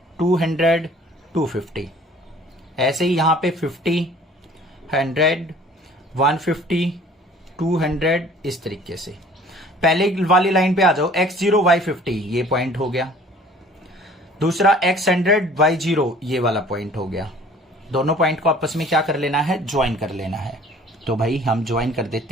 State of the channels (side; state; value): both; normal; correlation 0.51